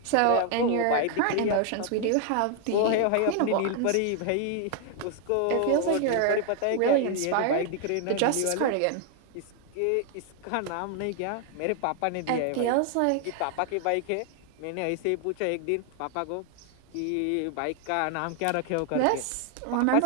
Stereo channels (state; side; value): different; both; correlation 0.00